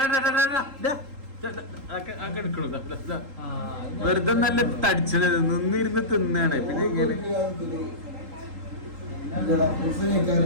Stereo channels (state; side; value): late; left; 3.8 ms